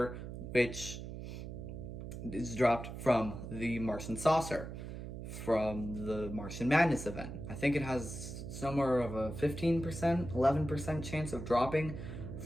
which is dropped from the Martian Saucer, from the Martian Madness event. I think it has somewhere of a 15%, 11% chance of dropping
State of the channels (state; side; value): noise; right; hum, 8 dB below the sound